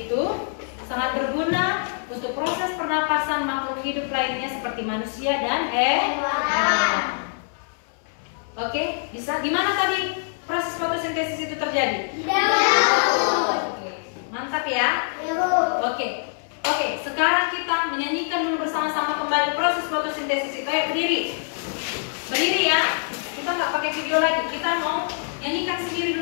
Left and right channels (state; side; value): silent; right; 62 dB below the other